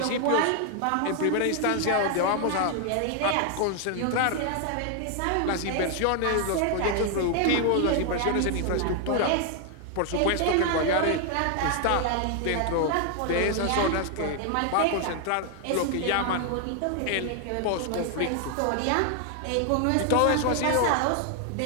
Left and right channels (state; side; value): different; both; correlation 0.00